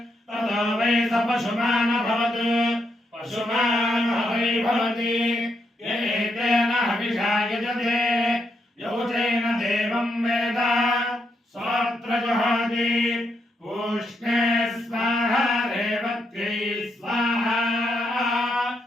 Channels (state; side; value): normal; both; correlation 0.80